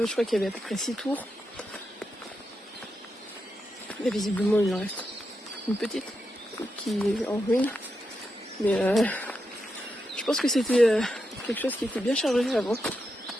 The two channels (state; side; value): normal; both; correlation 0.86